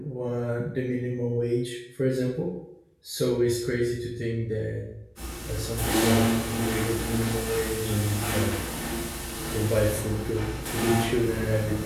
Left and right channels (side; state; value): both; identical; correlation 1.00